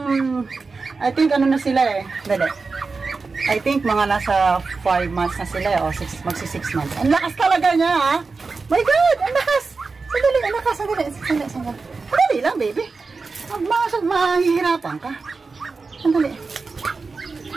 na sila, eh. Dali. I think mga nasa 5 months na sila, eh. O, magsi 6 months. Ang lakas talaga niya, ha? My God! Ang lakas! Sandali, anak ka, sandali. Sandali lang, baby. Mahihirapan ka. Sandali.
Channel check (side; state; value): left; quieter; 4.3 dB